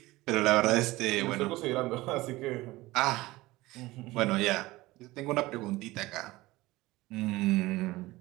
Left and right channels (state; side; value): quieter; left; 19.3 dB